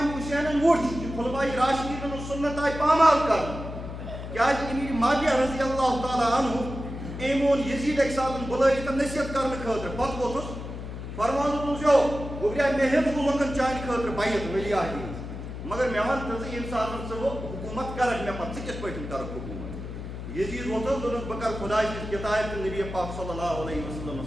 حُسینن وُچھ کہِ خُلفاء راشدیٖنن ہٕنٛز سُنت آیہِ پامال کرنہٕ کیازِ امیر معاویہ رضی اللہ تعالیٰ عنہ أمۍ اوٚن یزیٖد اَکہِ ساتہٕ بُلٲیِتھ نصیحت کرنہٕ خٲطرٕ پتہٕ ووٚتھُس فرمان اوسیو گوٚبریا مےٚ ہیٚژ لُکن چانہِ خٲطرٕ بیعت ولی عہدِ ہٕنٛز مگر مےٚ وَن تہٕ ژٕ ییٚمہِ ساتہٕ ژٕ وۄنۍ حکوٗمت کرکھ مےٚ پتہٕ ژٕ کِتھ پٲٹھۍ کرکھ حکوٗمت یزیٖد ووٚتھُس دوٚپُن بہٕ کرٕ خۄداے سٕنٛز کِتابہِ تہٕ نبی پاک صلی اللہ علیہ وسلم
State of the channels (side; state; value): left; noise; hum, 9 dB below the sound